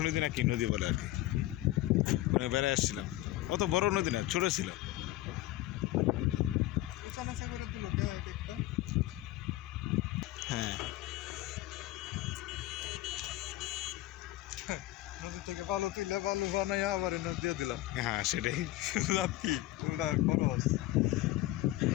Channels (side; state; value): right; quieter; 16.4 dB